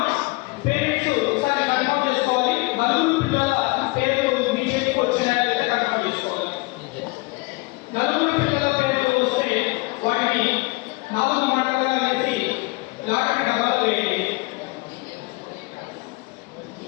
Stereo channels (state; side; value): quieter; right; 25.6 dB